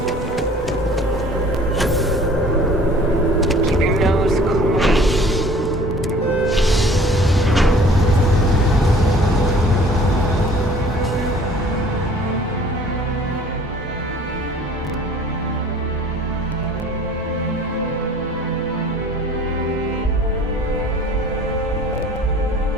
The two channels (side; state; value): both; normal; correlation 0.50